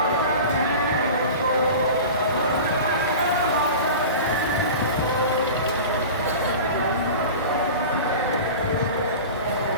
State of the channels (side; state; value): both; inverted; correlation -0.34